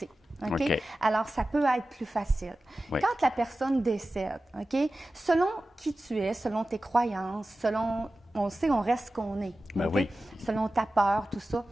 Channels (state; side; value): normal; both; correlation 0.95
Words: Alors, ça peut être plus facile. Quand la personne décède, selon qui tu es, selon tes croyances, selon... On sait, on reste ce qu'on est. Selon ta peur, tout ça.